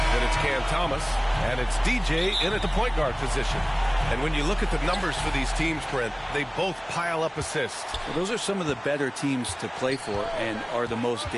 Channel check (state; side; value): identical; both; correlation 1.00